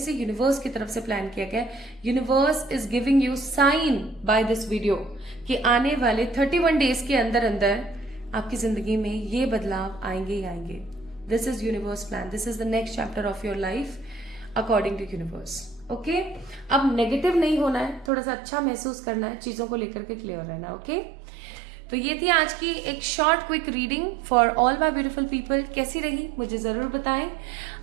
यूनिवर्स की तरफ से प्लान किया गया। Universe is giving you sign by this video कि आने वाले 31 डेज के अंदर अंदर आपकी जिंदगी में ये बदलाव आएंगे ही आएंगे। This is universe plan, this is the next chapter of your life according to universe, okay. अब नेगेटिव नहीं होना है, थोड़ा सा अच्छा महसूस करना है, चीजों को लेकर के क्लियर रहना, ओके। तो ये थी आज की एक short quick reading for all my beautiful people. कैसी रही मुझे जरूर बताएं,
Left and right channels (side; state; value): left; drops out; at 18.1 s